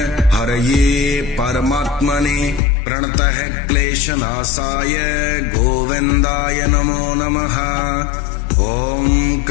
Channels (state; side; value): drops out; right; at 2.6 s